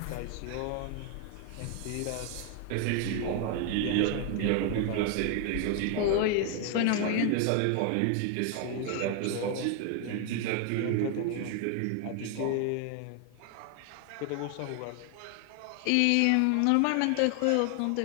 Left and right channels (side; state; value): both; different; correlation 0.00